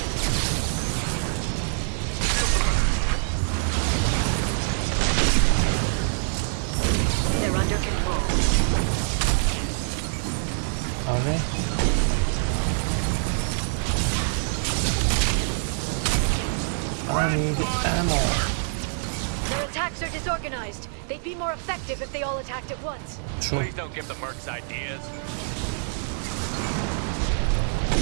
They're under control. Scratch one! Their attacks are disorganized. They'd be more effective if they all attacked at once. Please don't give the mercs ideas.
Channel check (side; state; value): left; silent; digital silence